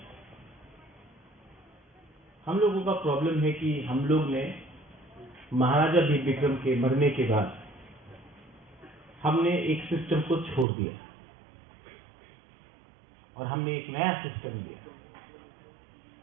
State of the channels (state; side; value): drops out; left; at 10.7 s